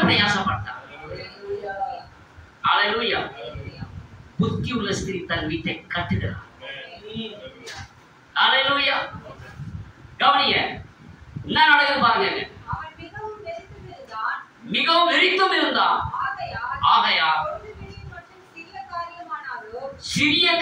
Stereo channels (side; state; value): both; identical; correlation 1.00